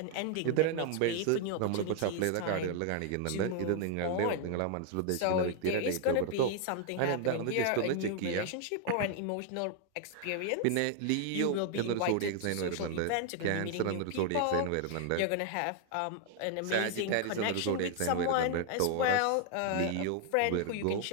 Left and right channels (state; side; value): different; both; correlation 0.00